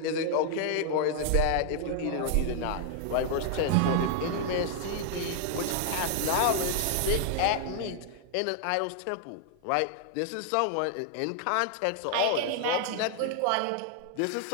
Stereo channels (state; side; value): different; both; correlation 0.00